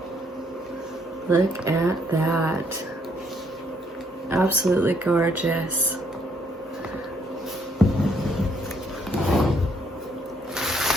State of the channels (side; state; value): both; normal; correlation 0.68